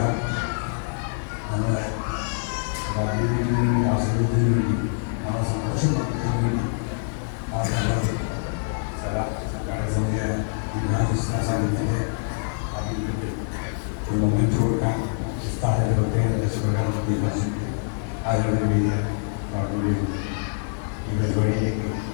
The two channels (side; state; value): right; silent; 62 dB below the other